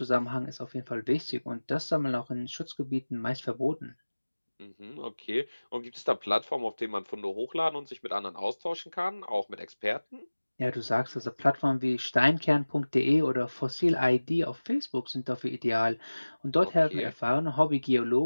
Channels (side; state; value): both; inverted; correlation -1.00